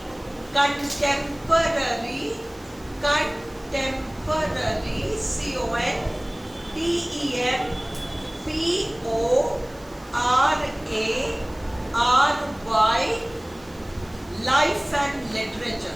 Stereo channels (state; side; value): noise; right; hiss, 26 dB below the sound